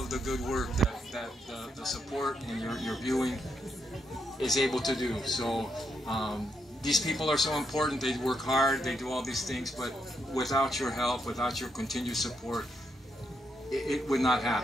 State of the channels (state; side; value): normal; both; correlation 0.79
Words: of the good work that the support and your viewing is able to do. So these people are so important. They work hard, they do all these things, but without your help, without your continued support, it would not